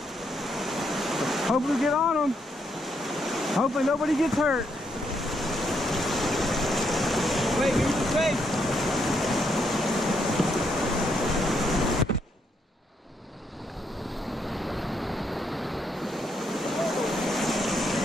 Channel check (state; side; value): normal; both; correlation 0.76